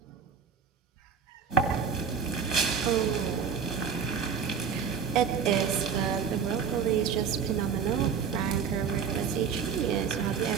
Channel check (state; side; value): quieter; left; 6.6 dB